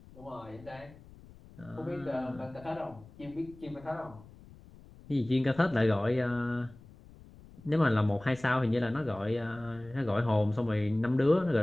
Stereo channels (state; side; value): noise; left; rumble, 21 dB below the sound